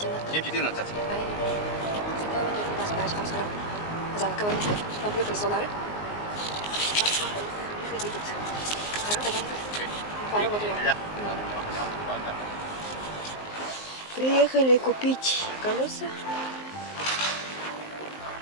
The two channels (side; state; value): right; late; 19 ms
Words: 7:14. Занок говорит, нам приехали солары. Едет. Приехали купить колеса